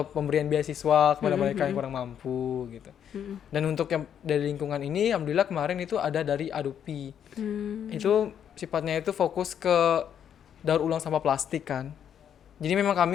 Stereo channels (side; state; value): right; quieter; 8.9 dB